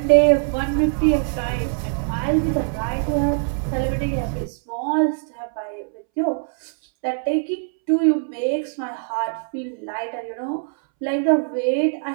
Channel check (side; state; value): left; silent; 64 dB below the other